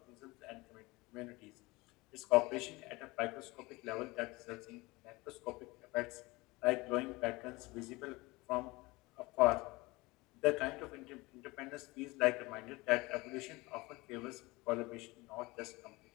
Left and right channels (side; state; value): right; quieter; 22.7 dB